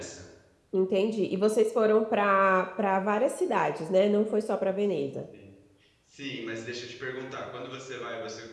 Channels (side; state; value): both; identical; correlation 1.00